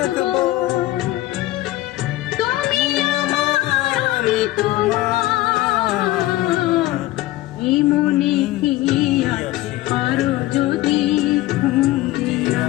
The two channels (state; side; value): quieter; right; 16.8 dB